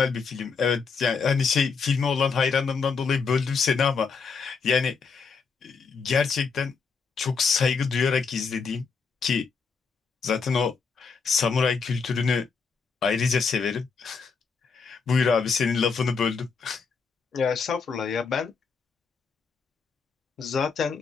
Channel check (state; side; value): quieter; right; 5.3 dB